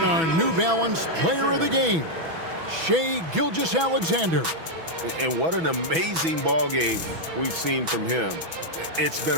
our New Balance Player of the Game, Shai Gilgeous-Alexander. And what an amazing ball game we've seen from him. It's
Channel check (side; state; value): left; late; 6.1 ms